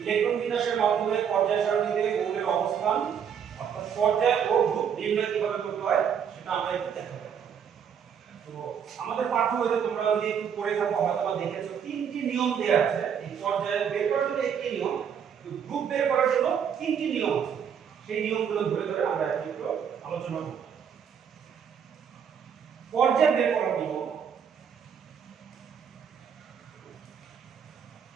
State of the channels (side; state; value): left; quieter; 7.8 dB